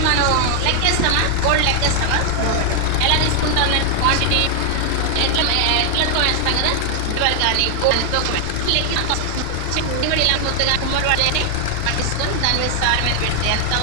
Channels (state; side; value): different; both; correlation 0.00